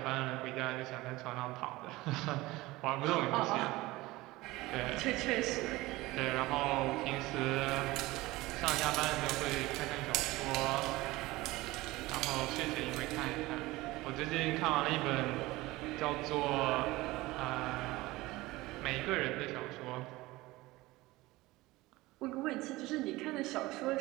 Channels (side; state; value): left; quieter; 19.7 dB